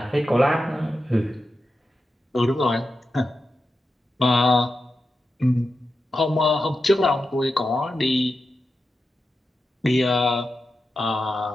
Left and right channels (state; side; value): normal; both; correlation 0.90